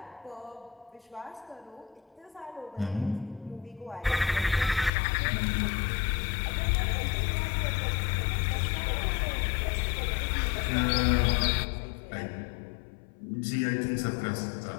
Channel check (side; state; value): right; drops out; at 4.9 s